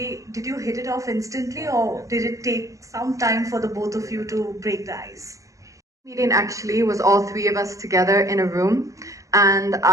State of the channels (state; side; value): late; left; 0.16 ms